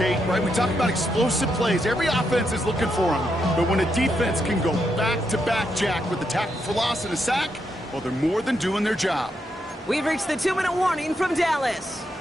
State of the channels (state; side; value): normal; both; correlation 0.81